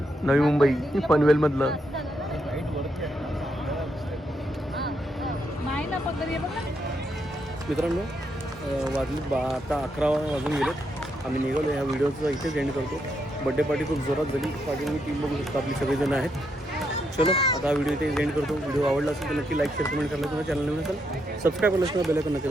नवी मुंबई पनवेल मधलं. नाही ना पकडे बघ ना. मित्रांनो वाजले आता 11 वाजून गेलेत. आम्ही निघालो. ह्या व्हिडिओचा इथेच एंड करतो. बड्डे पार्टी खूप जोरात झाली. पार्टीमध्ये टीम बघू शकतो आपली सगळेजण आहेत. चलो आता हा व्हिडिओ इथे एंड करतो. व्हिडिओ आवडला असेल तर नक्की लाईक शेअर कमेंट करायला. तुम्हाला चॅनल नवीन असेल सबस्क्राईब करायला बेल आयकॉन नक्की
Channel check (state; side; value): normal; both; correlation 0.79